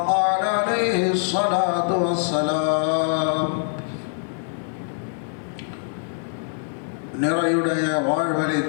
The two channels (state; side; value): silent; right; 62 dB below the other